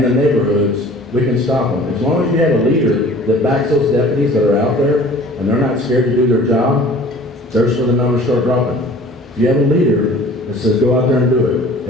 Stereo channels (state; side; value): normal; both; correlation 0.47